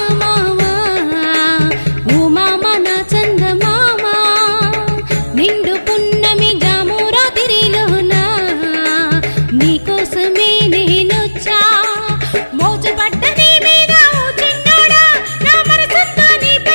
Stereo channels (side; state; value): both; inverted; correlation -1.00